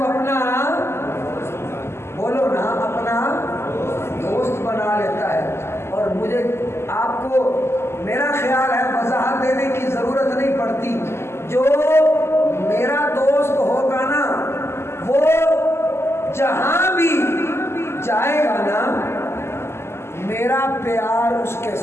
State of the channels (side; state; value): right; late; 0.12 ms